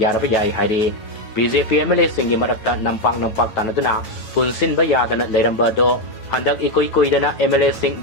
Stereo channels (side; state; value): right; late; 9.3 ms